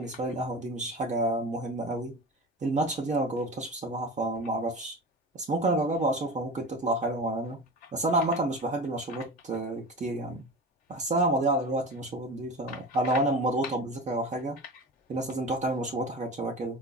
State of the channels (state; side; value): normal; both; correlation 0.31